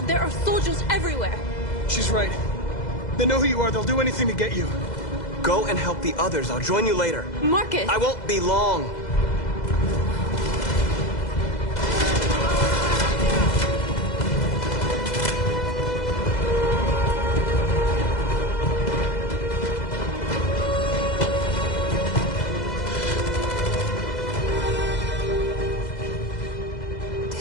There are soldiers everywhere. She's right. They know who you are. They'll do anything to get you. Go and help the others. I'll join you later. Marcus! I won't be long.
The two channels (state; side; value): late; right; 2.0 ms